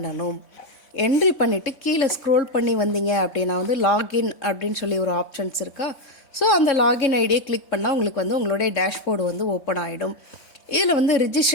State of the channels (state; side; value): late; right; 4.5 ms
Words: என்ட்ரி பண்ணிவிட்டு கீழே ஸ்க்ரோல் பண்ணி வந்தீங்க அப்படின்னா வந்து லாகின் அப்படின்னு சொல்லி ஒரு ஆப்ஷன்ஸ் இருக்கா. ஸோ அந்த லாகின் ஐடியை கிளிக் பண்ணால் உங்களுக்கு வந்து உங்களுடைய டேஷ்போர்டு வந்து ஓப்பன் ஆகிடும். இதில் வந்து